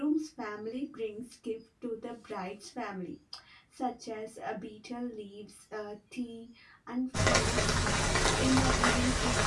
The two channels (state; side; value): identical; both; correlation 1.00